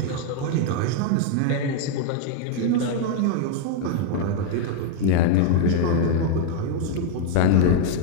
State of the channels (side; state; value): both; different; correlation 0.00